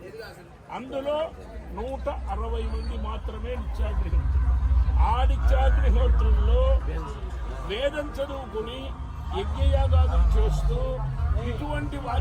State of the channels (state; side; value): identical; both; correlation 1.00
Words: అందులో 160 మంది మాత్రమే నిత్యాగ్నిహోత్రులు. ఆ నిత్యాగ్నిహోత్రుల్లో వేదం చదువుకుని యజ్ఞయాగాదులు చేస్తూ ఇటువంటి